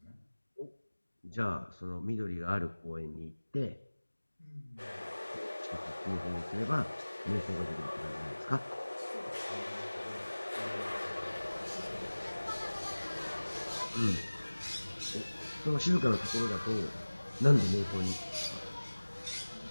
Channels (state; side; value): inverted; both; correlation -1.00